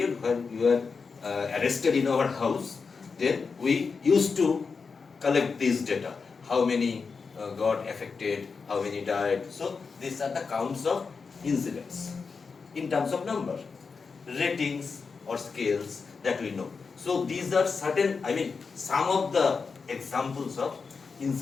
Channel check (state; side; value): quieter; right; 5.0 dB